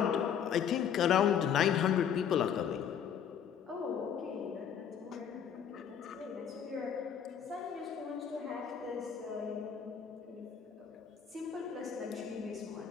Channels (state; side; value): quieter; right; 8.1 dB